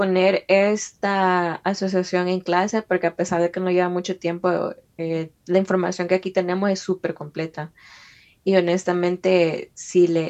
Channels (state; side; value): identical; both; correlation 1.00